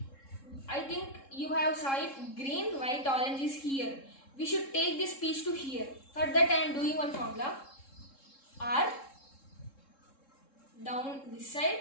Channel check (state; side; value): late; right; 3.7 ms